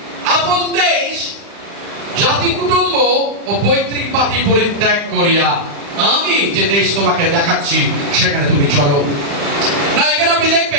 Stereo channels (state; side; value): late; left; 35 ms